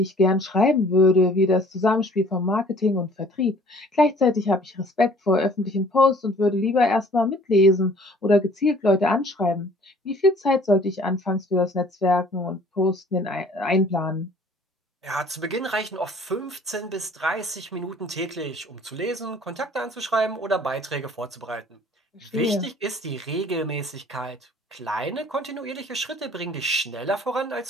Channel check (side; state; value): both; normal; correlation 0.53